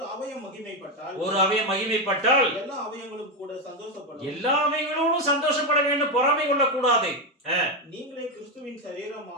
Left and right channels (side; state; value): both; normal; correlation 0.08